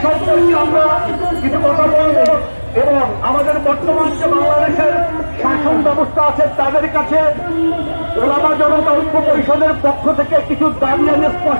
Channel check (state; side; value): inverted; both; correlation -1.00